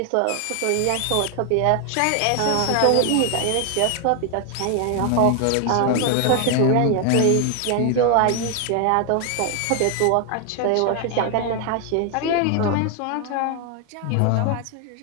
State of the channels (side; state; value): both; different; correlation 0.00